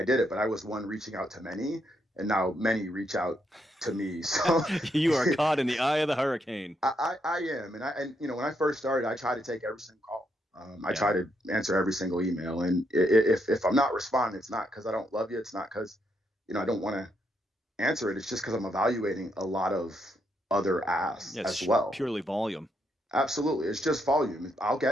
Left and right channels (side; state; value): both; normal; correlation 0.78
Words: did it, but I was one reaching out to many, and now many reach out to me. So You are caught in the eye of the hurricane. I am. And when I first started, I try to take every single call. I Yeah. try to answer every single email. And if I'm not responding, it's not because I don't love you. It's not because, I don't want to answer it. It's just because I'm evaluating a lot of other asks Yeah, as it's well. purely volume. Absolutely. It's just volume. I'll